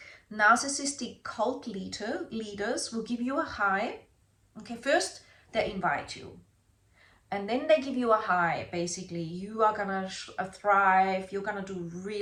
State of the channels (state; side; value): identical; both; correlation 1.00